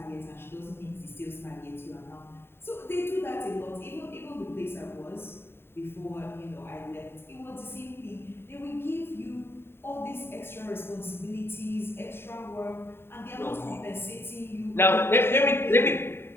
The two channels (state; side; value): late; right; 0.11 ms